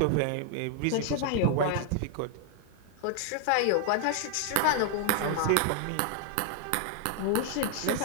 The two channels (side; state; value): both; different; correlation 0.00